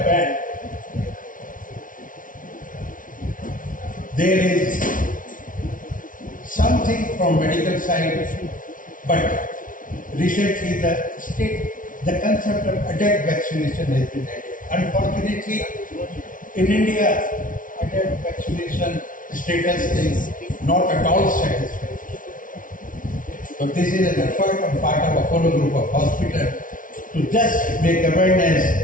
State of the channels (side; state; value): right; late; 0.38 ms